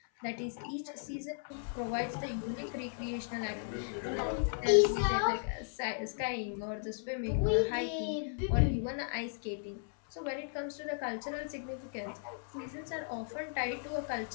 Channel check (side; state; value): right; silent; 54 dB below the other